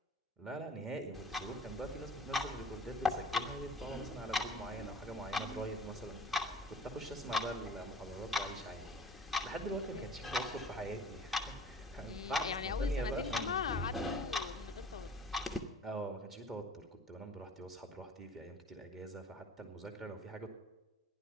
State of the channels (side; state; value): both; normal; correlation 0.46